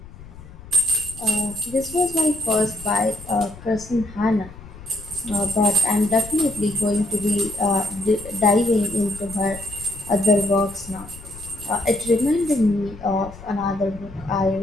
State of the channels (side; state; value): left; noise; rumble, 17 dB below the sound